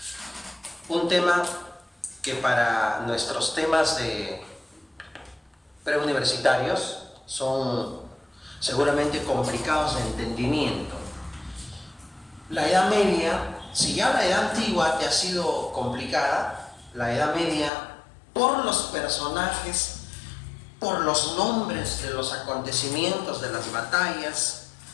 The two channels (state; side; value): drops out; right; at 17.7 s